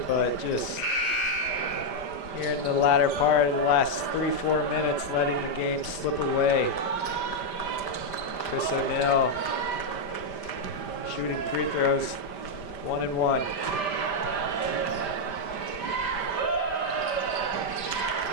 but just here in the latter part of the last 3-4 minutes, letting the game slip away. Chris O'Neill shooting free throws, 1 and 1.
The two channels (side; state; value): right; late; 5.1 ms